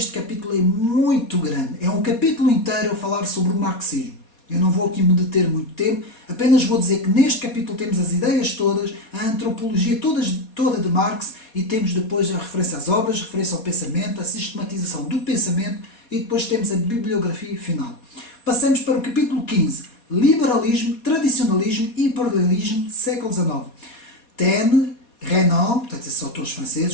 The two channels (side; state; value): right; late; 4.2 ms